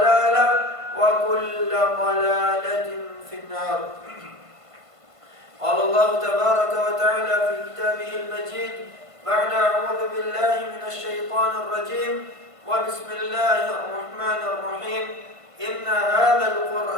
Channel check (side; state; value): left; late; 1.5 ms